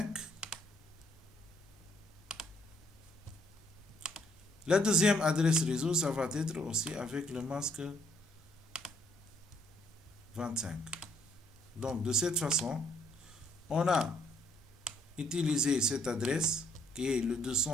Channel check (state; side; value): normal; both; correlation 0.67